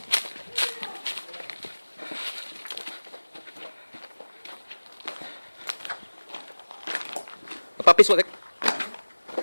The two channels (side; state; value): both; inverted; correlation -1.00